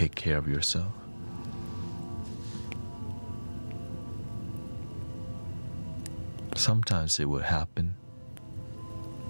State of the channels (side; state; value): both; inverted; correlation -1.00